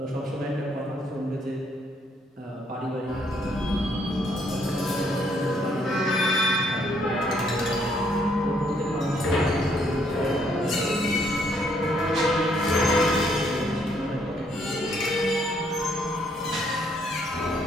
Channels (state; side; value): normal; both; correlation 0.69